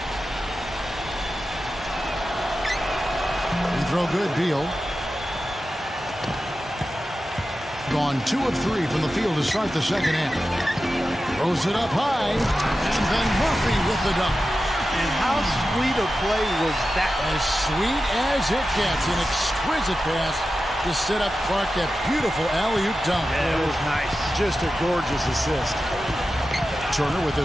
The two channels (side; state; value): both; normal; correlation 0.92